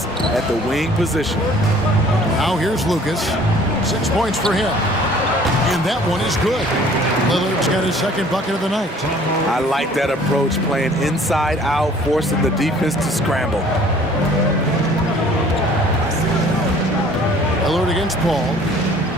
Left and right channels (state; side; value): normal; both; correlation 0.53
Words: at the wing position. Now here's Lucas. 6 points for him. And that one is good. Lillard's got his second bucket of the night. I like that approach, playing inside out, forcing the defense to scramble. Lillard against Paul.